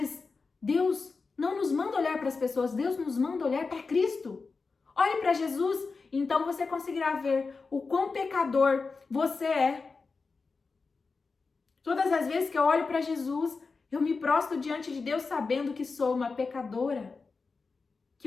Deus não nos manda olhar para as pessoas, Deus nos manda olhar para Cristo. Olhe para Jesus, então você conseguirá ver o quão pecador você é. Todas as vezes que eu olho para Jesus, eu me prostro diante de Deus sabendo que sou uma pecadora,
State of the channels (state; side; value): quieter; right; 4.4 dB